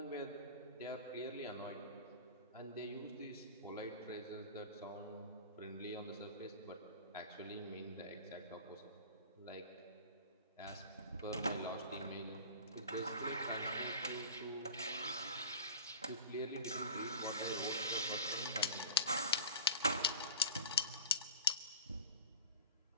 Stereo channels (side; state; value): both; inverted; correlation -0.37